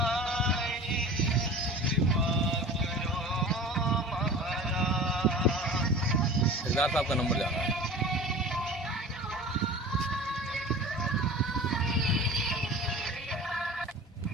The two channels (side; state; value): both; normal; correlation 0.38